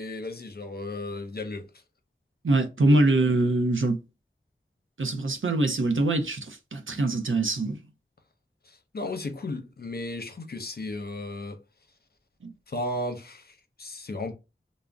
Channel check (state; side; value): normal; both; correlation 0.72